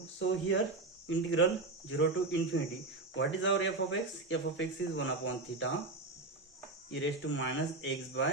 so here integral 0 to infinity, what is our f of x? F of x is 1 upon theta e raised to minus x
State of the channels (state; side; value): quieter; left; 3.3 dB